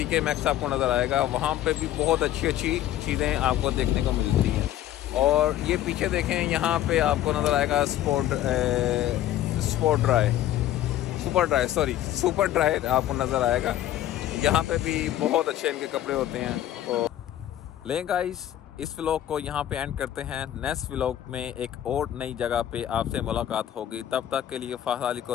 मैक्स आपको नज़र आएगा। वहाँ पे भी बहुत अच्छी अच्छी चीज़ें आपको देखने को मिलती हैं। और ये पीछे देखें, यहाँ पे आपको नज़र आएगा सुपर ड्राई आपको नज़र आएगा। यहाँ पे भी बहुत अच्छे इनके कपड़े होते हैं। तो लें गाइस, इस व्लॉग को यहाँ पे एंड करते हैं। नेक्स्ट व्लॉग में एक और नई जगह पे आपसे मुलाकात होगी। तब तक के लिए फ़ाज़ अली को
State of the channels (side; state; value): right; quieter; 12.5 dB